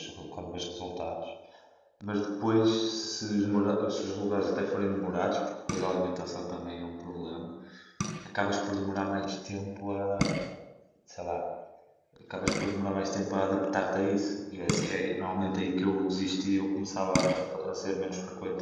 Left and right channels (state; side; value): identical; both; correlation 1.00